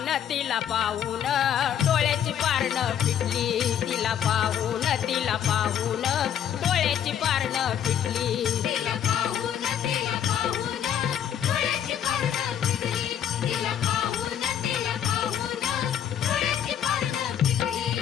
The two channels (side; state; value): right; quieter; 9.5 dB